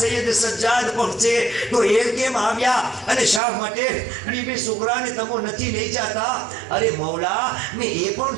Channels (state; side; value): drops out; left; at 3.4 s